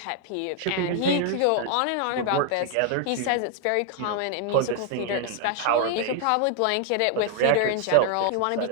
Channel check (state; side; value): different; both; correlation 0.00